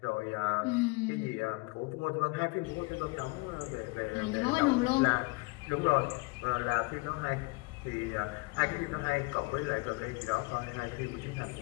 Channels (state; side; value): quieter; right; 26.5 dB